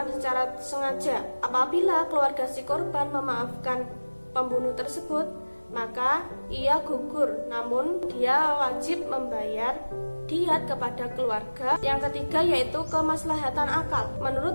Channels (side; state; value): both; inverted; correlation -1.00